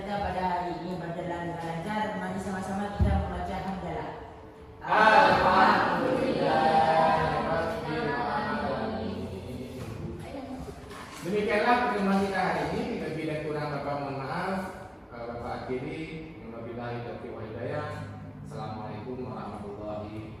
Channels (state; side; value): identical; both; correlation 1.00